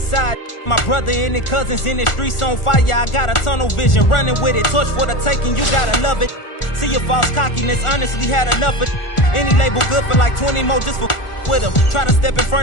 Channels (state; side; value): late; right; 1.4 ms